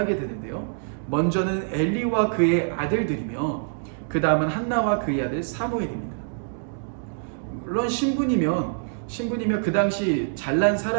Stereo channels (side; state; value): left; silent; digital silence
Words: 되는데요. 먼저는 엘리와 그의 아들들이며 그 다음은 한나와 그의 아들 사무엘입니다. 물론 신분이며 그 당시 잘난